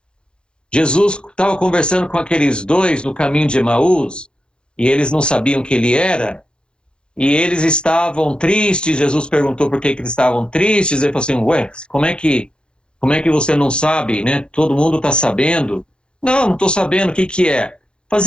Jesus estava conversando com aqueles 2 no caminho de Emaús, e eles não sabiam quem ele era, e eles estavam tristes. Jesus perguntou por que eles estavam tristes. Ele falou assim: ué, como é que você não sabe, né? Todo mundo está sabendo. Não estou sabendo o que é. Mas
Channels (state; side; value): late; right; 0.052 ms